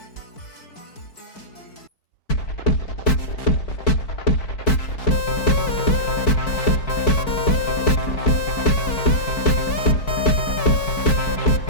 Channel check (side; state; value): right; late; 4.6 ms